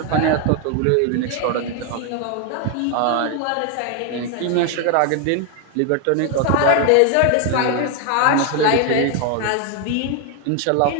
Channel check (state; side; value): different; both; correlation 0.01